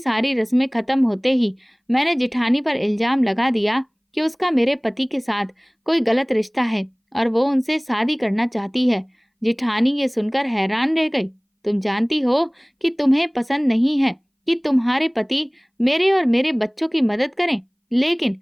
रस्में खत्म होते ही मैंने जेठानी पर इल्ज़ाम लगा दिया कि उसका मेरे पति के साथ कोई गलत रिश्ता है और वो उनसे शादी करना चाहती है। जेठानी ये सुनकर हैरान रह गई। तुम जानती हो कि तुम्हें पसंद नहीं है कि तुम्हारे पति मेरे और मेरे बच्चों की मदद करें, लेकिन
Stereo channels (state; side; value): identical; both; correlation 1.00